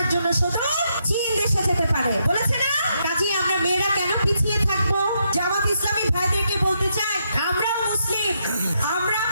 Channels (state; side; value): inverted; both; correlation -0.79